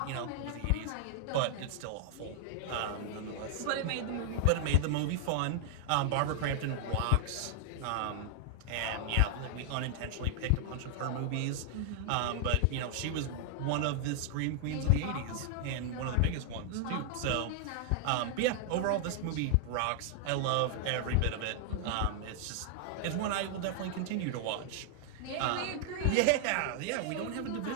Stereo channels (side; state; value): both; different; correlation 0.00